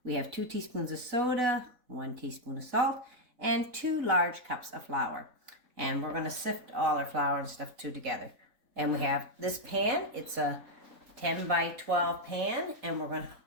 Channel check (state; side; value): late; left; 3.8 ms